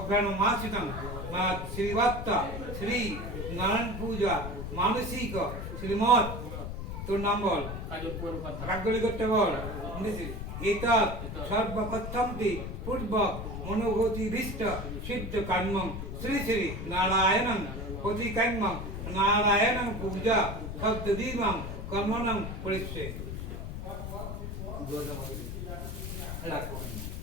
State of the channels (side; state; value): left; noise; rumble, 6 dB below the sound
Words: মাসিতং শ্রীবাত্তা শ্রী নারায়ণ পূজা মানসিক শ্রীমৎ। তোর নাম বল কাজল কথা রাগলি করতে বল এতৎ সর্বপ্রথমটি পূর্বক মনোগতিভীষ্ট সিদ্ধ কর্মং শ্রী শ্রী নারায়ণং প্রতিকর্মং নারায়ণং পূজা শব্দদীপং কর্মণং পরিষ্যে। রাখো